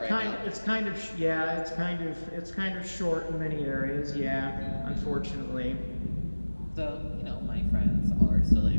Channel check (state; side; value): inverted; both; correlation -1.00